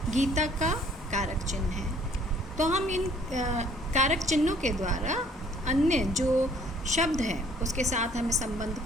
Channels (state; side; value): normal; both; correlation 0.58